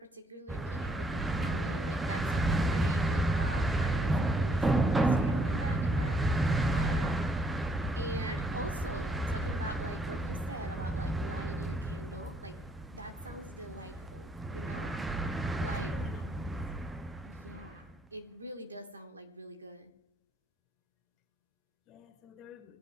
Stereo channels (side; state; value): both; normal; correlation 0.70